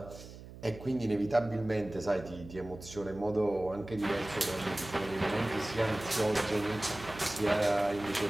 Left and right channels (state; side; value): noise; right; hum, 15 dB below the sound